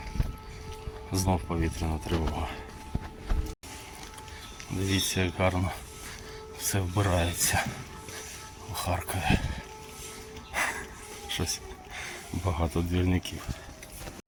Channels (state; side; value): identical; both; correlation 1.00